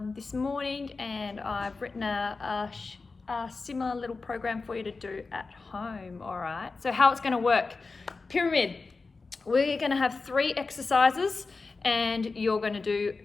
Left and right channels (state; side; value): quieter; right; 4.0 dB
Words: this morning, and I've written a similar little program for you to do at home. All right, so how it's going to work. Pyramid, we're going to have 3 exercises and you're going to do